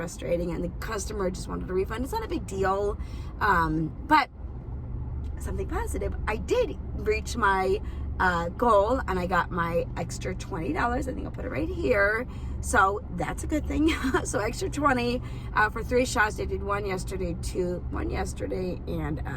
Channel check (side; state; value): both; identical; correlation 1.00